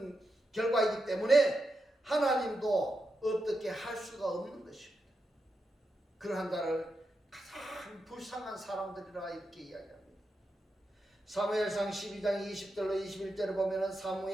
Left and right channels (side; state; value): both; normal; correlation 0.87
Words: 결과이기 때문에 하나님도 어떻게 할 수가 없는 것입니다. 그러한 자를 가장 불쌍한 사람들이라 이렇게 이야기합니다. 사무엘상 12장 20절로 21절을 보면은